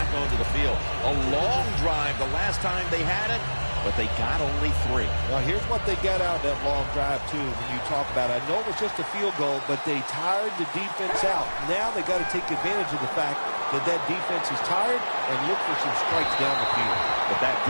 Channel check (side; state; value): both; inverted; correlation -1.00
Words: onto the field. A long drive the last time they had it, but they got only 3. Now, here's what they got out of that long drive, too, when you talk about it. I know it was just a field goal, but they tired the defense out. Now they got to take advantage of the fact that that defense is tired and look for some strikes down the field. But that